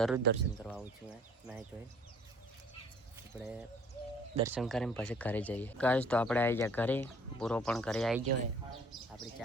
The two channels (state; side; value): normal; both; correlation 0.56